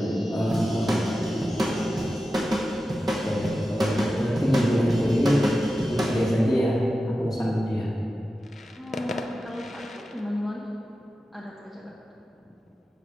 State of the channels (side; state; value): both; normal; correlation 0.93